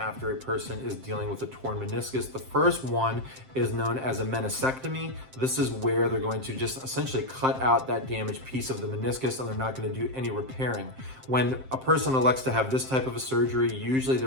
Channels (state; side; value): late; left; 7.6 ms